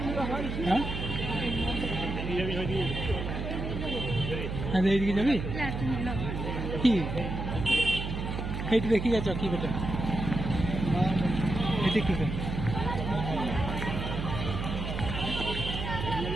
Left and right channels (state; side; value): noise; right; hum, 4 dB below the sound